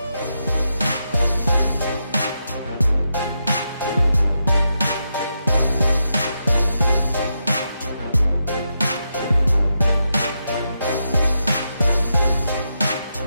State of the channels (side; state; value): both; inverted; correlation -0.85